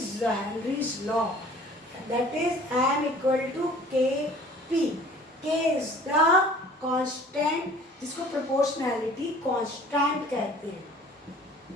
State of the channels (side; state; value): both; normal; correlation 0.49